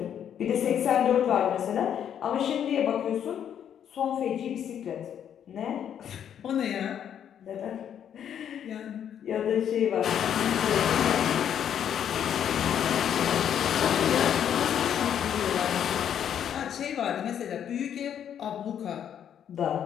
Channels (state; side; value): quieter; right; 9.2 dB